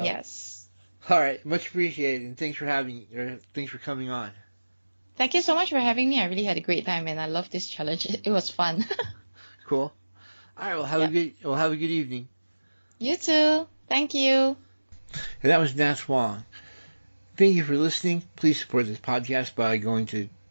Yes. all right, much appreciated, and thanks for coming on. Thank you so much for having me. I really had a great time, and I love this challenge. It was fun. Cool. All right, well have a good evening. You too. Thank you. And that was Natx Wang. Thank you for listening. Please support this podcast by going to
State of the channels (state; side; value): inverted; both; correlation -1.00